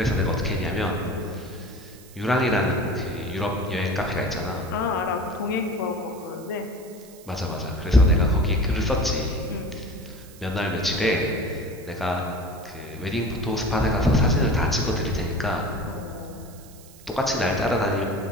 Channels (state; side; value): noise; right; hiss, 22 dB below the sound